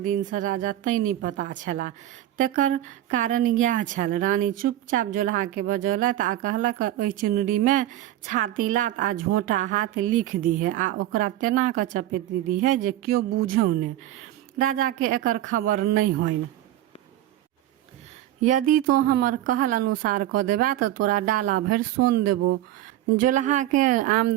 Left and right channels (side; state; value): left; quieter; 13.6 dB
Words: दिन से राजा तैं नहि पता छला। तेकर कारण इएह छल। रानी चुपचाप जोल्हा के बजौलथि आ कहलक, ओहि चुनरी में छाती लात आ झोंटा हाथ लिख दिहे आ ओकरा तेना कऽ चपेट दिहे जे केओ बूझौ ने, राजा के एकर खबर नहीं होइन। यदि तो हमर कहल अनुसार कऽ देबा तऽ तोरा डाला भरि सोन देबो। जोल्हा के